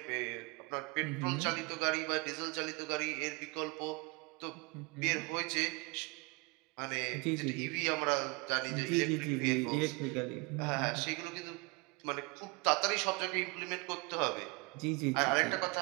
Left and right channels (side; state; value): left; quieter; 27.4 dB